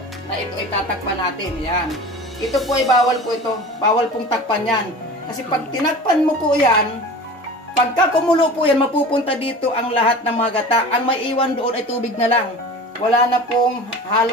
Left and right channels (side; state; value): both; normal; correlation 0.37